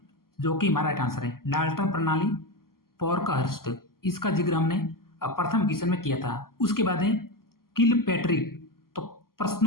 जो कि हमारा राइट आंसर है। डाल्टन प्रणाली, पोर्कहस्ट, इसका जिक्र हमने प्रथम क्वेश्चन में किया था। उसके बाद है किलपैट्रिक, तो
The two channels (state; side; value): late; right; 0.92 ms